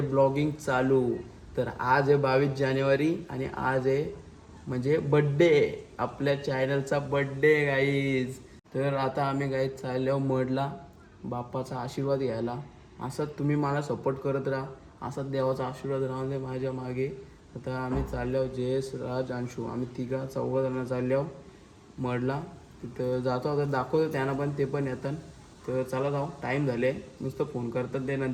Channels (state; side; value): identical; both; correlation 1.00